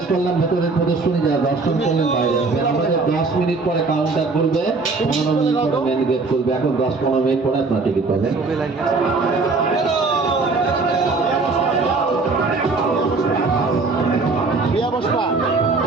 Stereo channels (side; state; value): left; quieter; 3.9 dB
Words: করলাম ভেতরের প্রদর্শনী, যারা দর্শন করলেন বাইরে আসবেন। আমাদের 10 মিনিট পরে কাউন্টার খুলবে, 15 মিনিট পরে মেন গেট খুলবে। এখন 10-15 মিনিট পরে আপনার টিকিট পাবেন। ছবি লাগবে। বিয়া বসপা